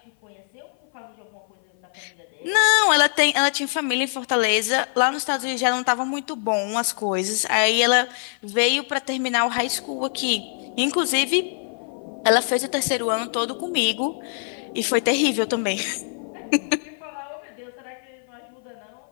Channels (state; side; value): silent; right; 56 dB below the other